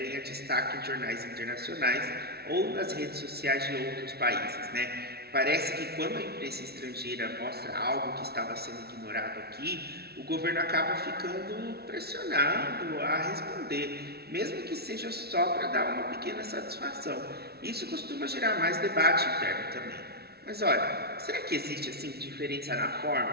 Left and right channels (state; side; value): late; left; 0.46 ms